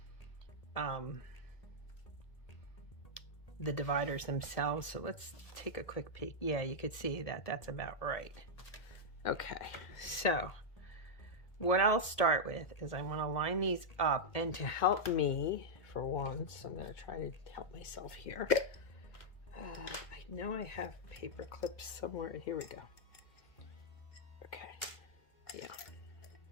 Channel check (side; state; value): right; late; 1.7 ms